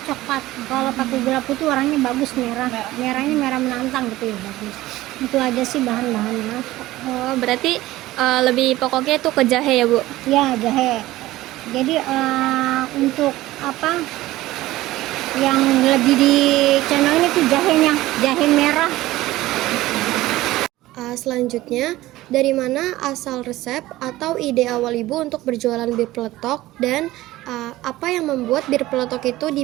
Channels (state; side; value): quieter; left; 16.9 dB